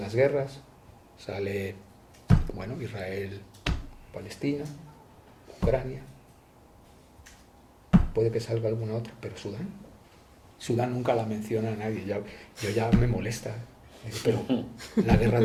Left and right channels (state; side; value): identical; both; correlation 1.00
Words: guerras, sale, bueno, Israel, Palestina, Ucrania, puede que salga alguna otra, pero Sudán nunca la menciona a nadie, yo ya me molesta. Digo, pero la guerra